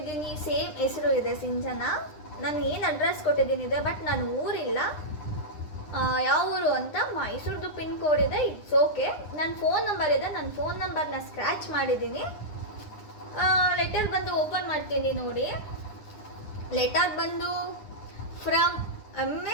ಸೇಮ್ ಹೆಸರು ಇದೆ, ಸಿಂಚನಾ. ನಾನು ಏನು ಅಡ್ರೆಸ್ ಕೊಟ್ಟಿದ್ದೀನಿ ಇದೆ, ಬಟ್ ನಾನು ಊರಿಲ್ಲ. ಯಾವ ಊರು ಅಂತ ಮೈಸೂರ್ದು ಪಿನ್ ಕೋಡ್ ಇದೆ. It's okay. ನನ್ನ ಫೋನ್ ನಂಬರ್ ಇದೆ, ನನ್ನ ಫೋನ್ ನಂಬರ್ನ ಸ್ಕ್ರ್ಯಾಚ್ ಮಾಡಿದ್ದೀನಿ. ಲೆಟರ್ ಬಂದು ಓಪನ್ ಮಾಡ್ತೀನಿ ನೋಡಿ. ಲೆಟರ್ ಬಂದು ಫ್ರಮ್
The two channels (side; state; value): right; late; 9.9 ms